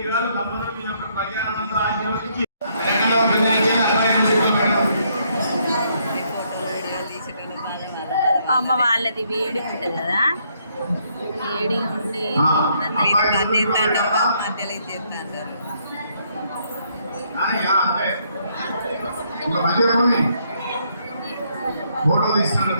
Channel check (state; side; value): inverted; both; correlation -0.71